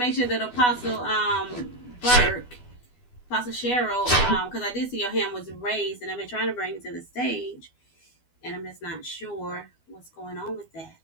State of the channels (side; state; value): right; late; 12 ms